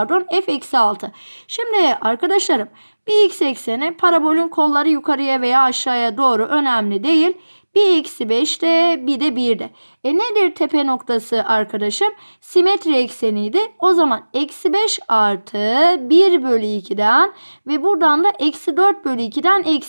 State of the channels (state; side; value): inverted; both; correlation -1.00